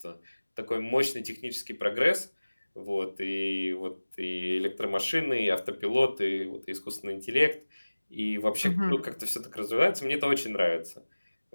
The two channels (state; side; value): inverted; both; correlation -1.00